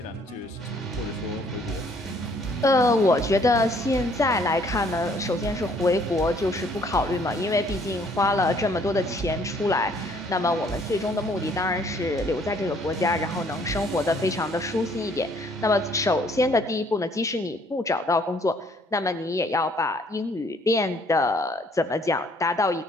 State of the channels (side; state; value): both; normal; correlation 0.62